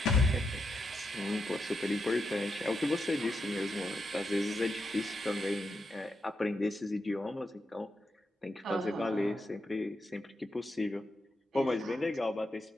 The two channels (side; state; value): both; normal; correlation 0.84